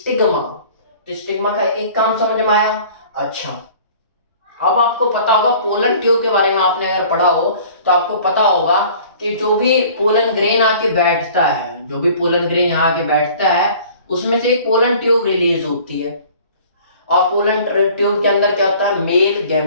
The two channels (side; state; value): both; inverted; correlation -0.49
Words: तो स्टिग्मा का एक काम समझ में आया। अच्छा, अब आपको पता होगा पोलन ट्यूब के बारे में, आपने अगर पढ़ा हो तो आपको पता होगा कि जो भी पोलन ग्रेन आके बैठता है, जो भी पोलन ग्रेन यहाँ आके बैठता है, उसमें से एक पोलन ट्यूब रिलीज होती है। और पोलन ट्यूब के अंदर क्या होता है? Male